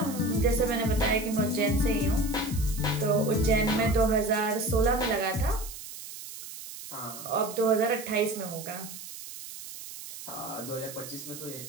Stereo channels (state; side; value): noise; right; hiss, 12 dB below the sound